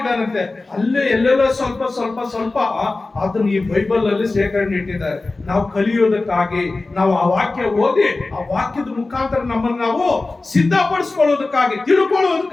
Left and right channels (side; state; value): right; quieter; 3.4 dB